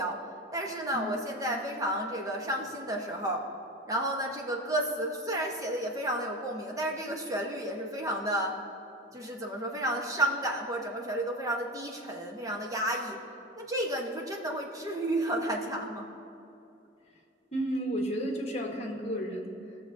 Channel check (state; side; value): normal; both; correlation 0.28